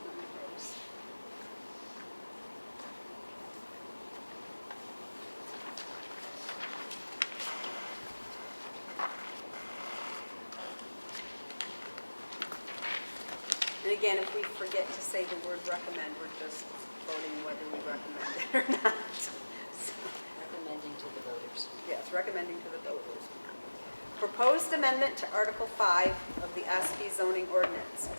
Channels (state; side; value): inverted; both; correlation -1.00